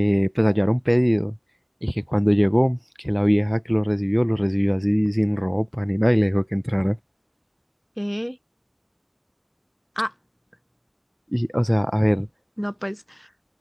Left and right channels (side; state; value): both; identical; correlation 1.00